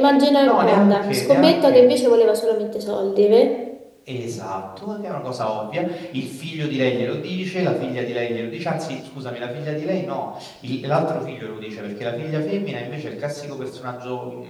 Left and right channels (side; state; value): both; identical; correlation 1.00